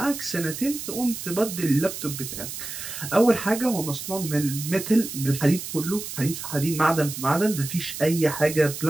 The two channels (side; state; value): right; noise; hiss, 8 dB below the sound